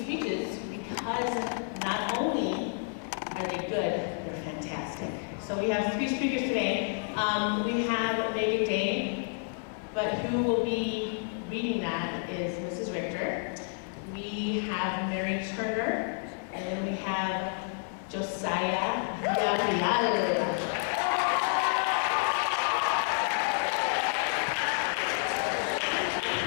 speeches because not only are they good, they're fantastic. So we have 3 speakers today. We have Meagan, but who will be reading that is Mrs. Richter. We have Mary Turner, and then we have Josiah Villarreal.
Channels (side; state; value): right; silent; 58 dB below the other